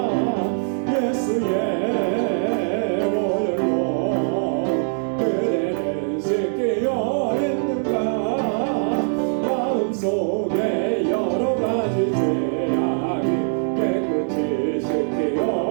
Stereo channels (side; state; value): left; silent; 64 dB below the other